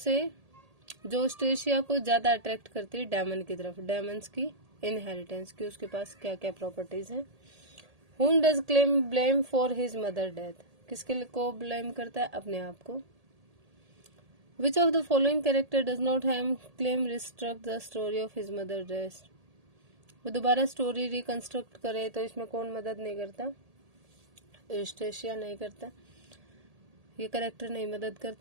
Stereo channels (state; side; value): late; left; 1.8 ms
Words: जो स्टेशिया को ज्यादा अट्रैक्ट करती है डेमन की तरफ? डेमन्स की इनहेरिटेंस की, उसके पास क्या क्या प्रॉपर्टीज हैं। Whom does Clem blame for his mother death? किसके को ब्लेम करता है? अपने आप को। Which of the following character does not have Clem reconstruct the story of his mother death? वो दोबारा स्टोरी रिकंस्ट्रक्ट करे तो इसमें कौन मदद नहीं करता? यूस्टेशिया नहीं करता, ये कैरेक्टर नहीं मदद